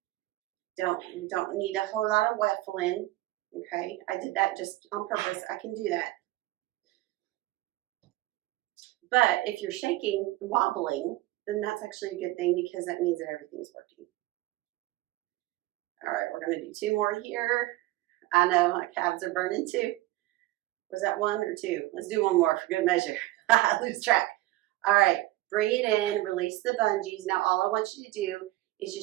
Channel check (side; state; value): left; quieter; 17.5 dB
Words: Don't need a whole lot of waffling, okay? I did that just on purpose. I can do that. But if you're shaking, wobbling, then that's actually a good thing because that means that everything's working. All right, we're going to do 2 more here. I know my calves are burning too. Was that 1 or 2? Let's do 1 more for good measure. I lose track. All right, bring it in, release the bungees. Now all I want you to do is